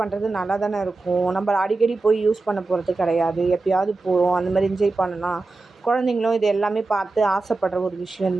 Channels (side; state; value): left; quieter; 3.5 dB